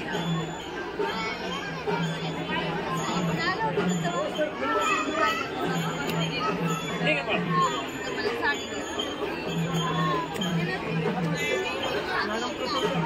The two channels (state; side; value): identical; both; correlation 1.00